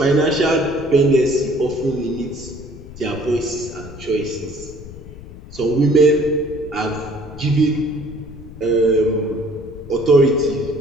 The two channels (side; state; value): left; noise; rumble, 16 dB below the sound